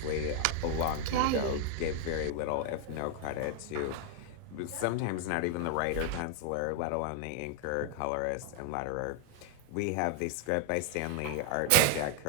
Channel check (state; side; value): different; both; correlation 0.00